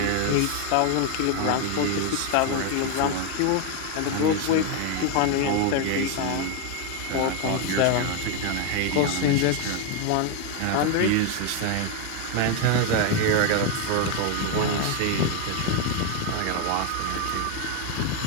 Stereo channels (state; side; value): different; both; correlation 0.01